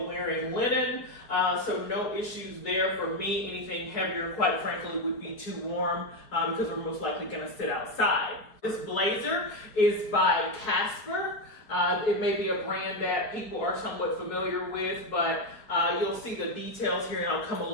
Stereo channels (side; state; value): right; late; 4.6 ms